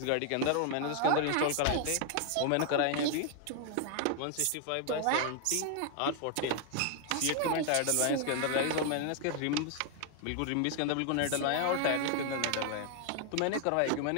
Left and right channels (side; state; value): both; different; correlation 0.00